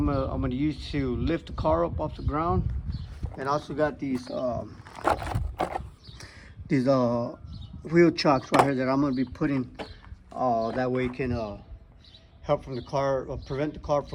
gonna use to lift the car up off the ground, and also got these wheel chocks right here that I'm gonna be putting. That way it can help from the car, prevent the car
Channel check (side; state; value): both; identical; correlation 1.00